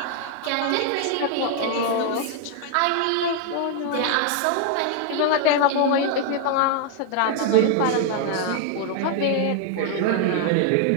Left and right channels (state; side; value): different; both; correlation 0.00